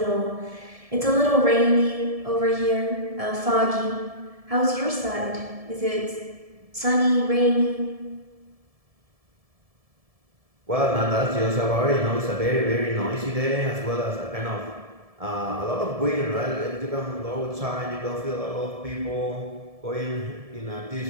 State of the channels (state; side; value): late; left; 1.7 ms